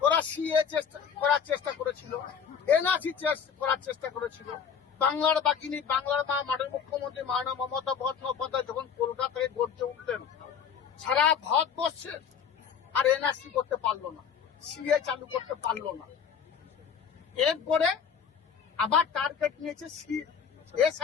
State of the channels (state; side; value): quieter; right; 7.1 dB